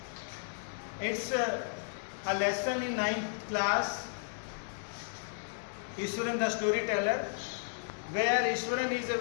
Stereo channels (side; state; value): right; silent; digital silence